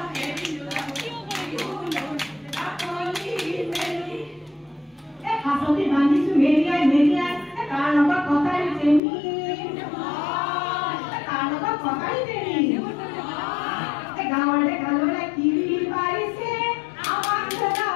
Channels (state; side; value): drops out; right; at 9.0 s